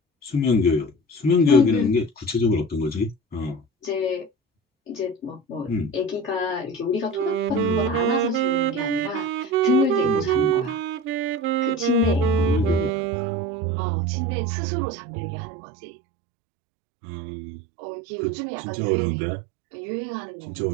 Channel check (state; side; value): drops out; left; at 12.9 s